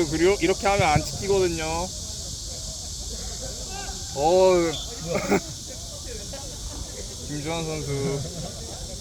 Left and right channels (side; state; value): both; identical; correlation 1.00